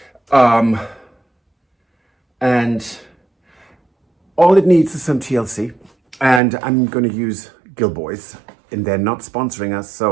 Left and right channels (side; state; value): left; drops out; at 6.4 s